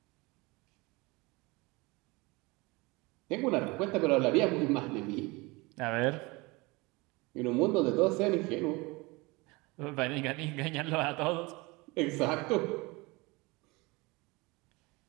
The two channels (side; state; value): left; quieter; 24.6 dB